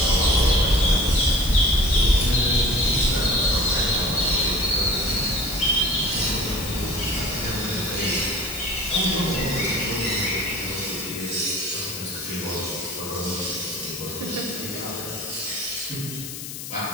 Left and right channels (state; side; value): noise; left; hiss, 9 dB below the sound